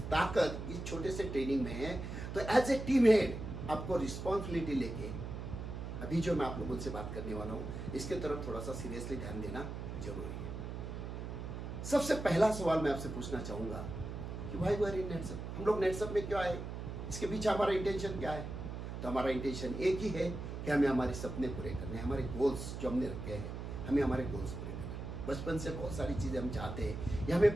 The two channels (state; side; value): noise; right; hum, 6 dB below the sound